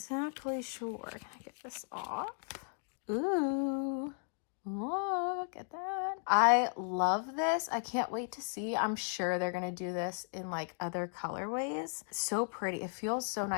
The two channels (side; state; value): right; silent; 54 dB below the other